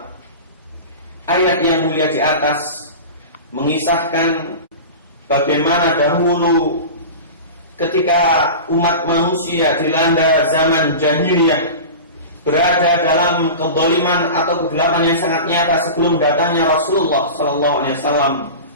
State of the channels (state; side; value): inverted; both; correlation -0.31